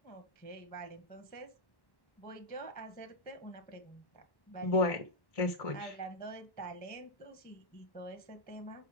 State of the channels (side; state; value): right; late; 1.1 ms